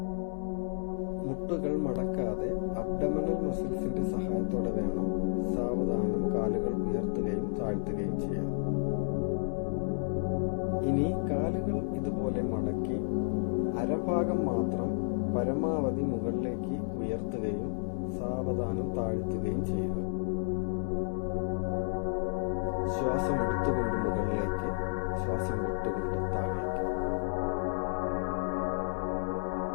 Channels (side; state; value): right; silent; 57 dB below the other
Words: മുട്ടുകൾ മടക്കാതെ അബ്ഡമനൽ മസിൽസിന്റെ സഹായത്തോടെ വേണം സാവധാനം കാലുകൾ ഉയർത്തുകയും താഴ്ത്തുകയും ചെയ്യാൻ. ഇനി കാലുകൾ ഇതുപോലെ മടക്കി അരഭാഗം മാത്രം പരമാവധി മുകളിലേക്ക് ഉയർത്തുകയും സാവധാനം താഴ്ത്തുകയും ചെയ്യുക. ശ്വാസം എടുത്തുകൊണ്ട് മുകളിലേക്ക്, ശ്വാസം വിട്ടുകൊണ്ട് താഴേക്ക്.